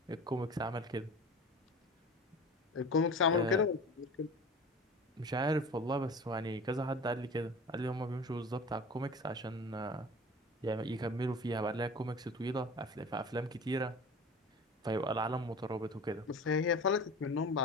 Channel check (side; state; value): both; normal; correlation 0.38